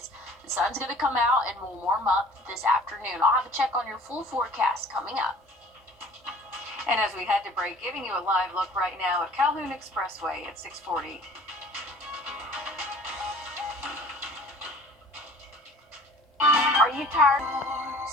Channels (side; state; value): both; normal; correlation 0.49